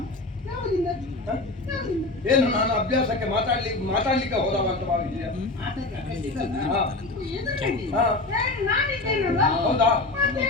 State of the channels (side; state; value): right; quieter; 3.1 dB